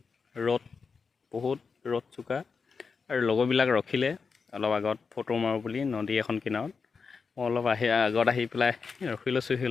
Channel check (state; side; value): quieter; right; 5.2 dB